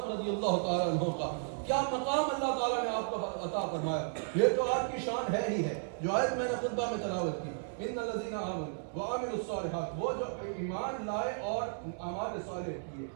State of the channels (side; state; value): left; silent; digital silence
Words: رضی اللہ تعالیٰ عنہ کا, کیا مقام اللہ تعالیٰ نے آپ کو عطا فرمایا. یہ تو آپ کی شان ہے ہی ہے. جو آیت میں نے خطبہ میں تلاوت کی, ان الذین آمنوا وعملوا الصالحات, وہ جو ایمان لائے اور اعمال صالح کیے,